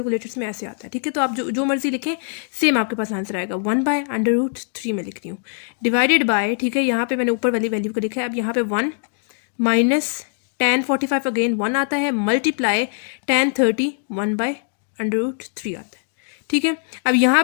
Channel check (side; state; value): right; silent; digital silence